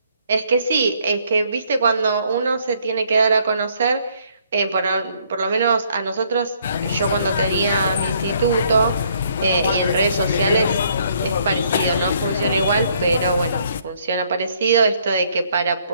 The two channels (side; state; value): both; inverted; correlation -0.66